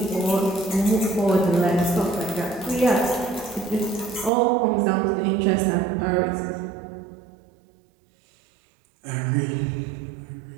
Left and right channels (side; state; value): left; drops out; at 4.3 s